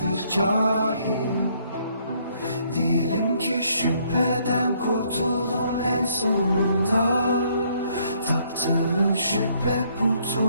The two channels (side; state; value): both; inverted; correlation -0.67